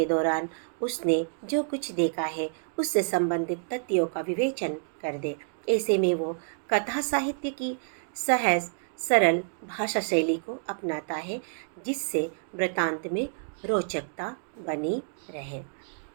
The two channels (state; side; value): silent; left; digital silence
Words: दौरान उसने जो कुछ देखा है उससे संबंधित तथ्यों का विवेचन कर दे। ऐसे में वो कथा साहित्य की सहज सरल भाषा शैली को अपनाता है, जिससे वृतांत में रोचकता बनी रहे।